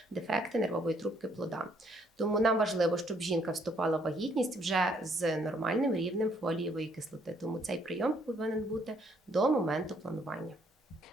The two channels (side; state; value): both; normal; correlation 0.68